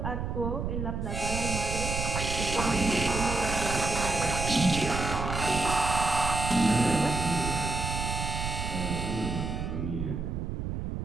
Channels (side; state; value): right; noise; rumble, 3 dB below the sound